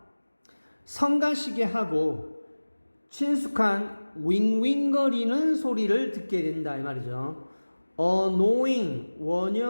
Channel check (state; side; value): inverted; both; correlation -1.00